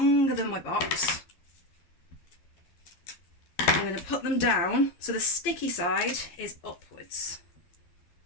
than my box. I'm going to put them down so the sticky side is upwards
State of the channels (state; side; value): late; right; 12 ms